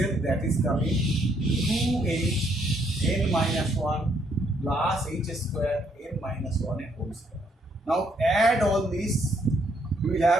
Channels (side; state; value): both; normal; correlation 0.71